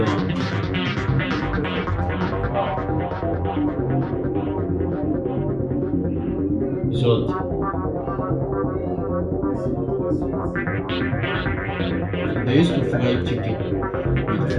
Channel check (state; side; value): identical; both; correlation 1.00